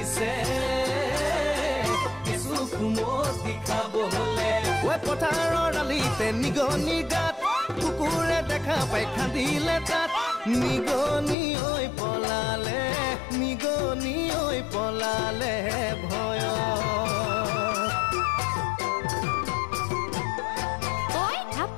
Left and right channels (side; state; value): right; drops out; at 11.4 s